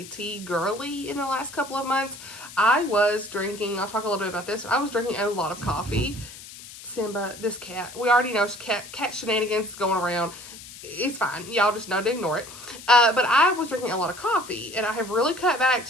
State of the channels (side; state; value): left; noise; hiss, 15 dB below the sound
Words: tea girly in the last couple of months. I was drinking, I'll talk a little bit about this. I was drinking a lot of coffee. Simba, this cat, we already know cat shenanigans is going around. It's fine. Y'all just know to ignore it. But I was drinking a lot of coffee, and I have really cut back